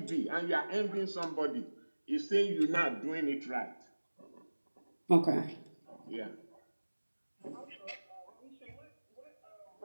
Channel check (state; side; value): inverted; both; correlation -1.00